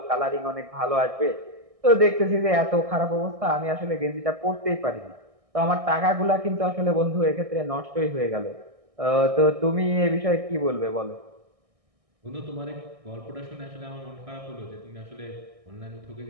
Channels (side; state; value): left; late; 1.6 ms